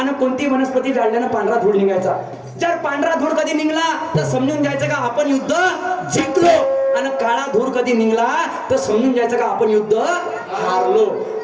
कोणती वनस्पती जाळल्यानं पांढरा धूळ निघायचा. जर पांढरा धूळ कधी निघला तर समजून जायचं का आपण युद्ध जिंकलो, आणि काळा धूळ कधी निघला तर समजून जायचं का आपण युद्ध हारलो.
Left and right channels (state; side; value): identical; both; correlation 1.00